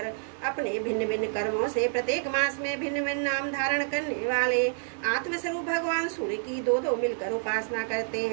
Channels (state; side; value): silent; left; digital silence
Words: अपने भिन्न भिन्न कर्मों से प्रत्येक मास में भिन्न भिन्न नाम धारण करने वाले आत्मस्वरूप भगवान सूर्य की 2-2 मिलकर उपासना करते